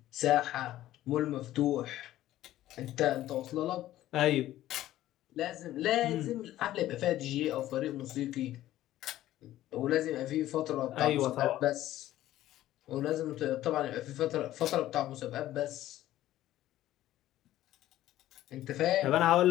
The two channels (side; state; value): right; quieter; 14.1 dB